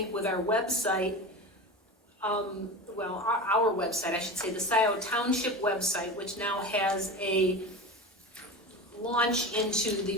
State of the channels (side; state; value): both; normal; correlation 0.28